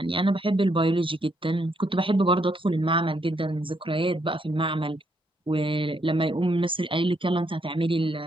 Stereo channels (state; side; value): normal; both; correlation 0.75